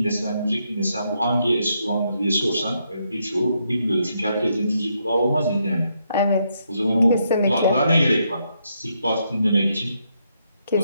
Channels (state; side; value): inverted; both; correlation -0.78